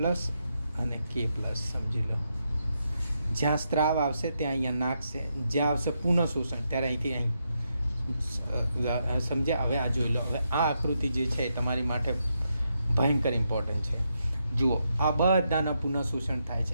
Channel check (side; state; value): both; inverted; correlation -0.82